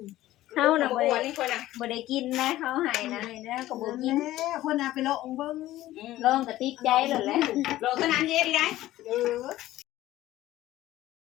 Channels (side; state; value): right; quieter; 15.2 dB